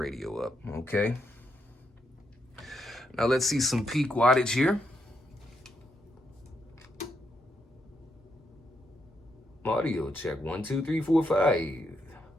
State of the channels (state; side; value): normal; both; correlation 0.79